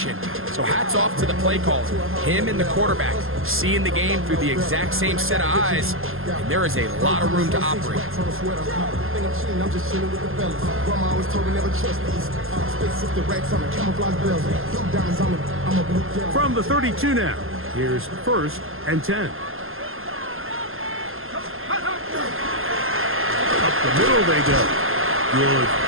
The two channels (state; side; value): late; left; 0.60 ms